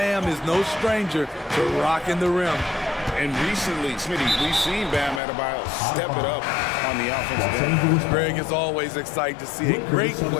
is no stranger to rocking the rim. And recently, Smitty, we've seen Bam Adebayo step it up on the offensive end. Greg is always excited to see a great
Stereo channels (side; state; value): right; drops out; at 5.2 s